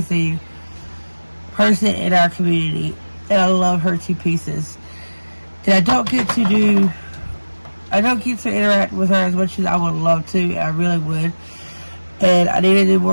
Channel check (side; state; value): both; inverted; correlation -1.00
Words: person in our community, and I love her to pieces. And I don't get to interact with her as much as I would love to, and I really would. And I need to do